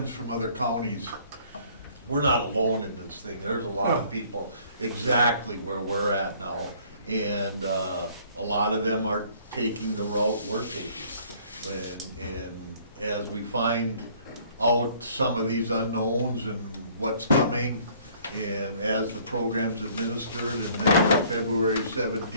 from other counties, we're not alone in this thing. There's a lot of people exactly where we're at now. And a lot of them are taking the route we're taking. And as we find out some of these unknowns and what's coming, and as the program's administered, and then on February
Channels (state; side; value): inverted; both; correlation -0.58